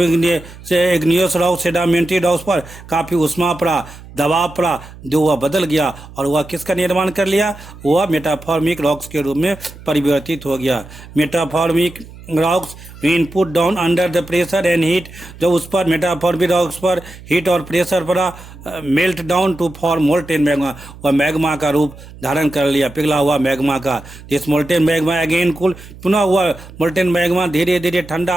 इग्नियस रॉक सेडिमेंट्री रॉक्स पर काफ़ी उष्मा पड़ा, दबाव पड़ा, जो वह बदल गया और वह किसका निर्माण कर लिया? वह मेटाफॉर्मिक रॉक्स के रूप में परिवर्तित हो गया. Metamorphic rocks when put down under the pressure and heat. जब उस पर मेटाफॉर्मिक रॉक्स पर हीट और प्रेशर पड़ा, melt down to form molten magma. वह मैग्मा का रूप धारण कर लिया, पिघला हुआ मैग्मा का. This molten magma again cool. पुनः हुआ मोल्टेन मैग्मा धीरे धीरे ठंडा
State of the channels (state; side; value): noise; right; hum, 18 dB below the sound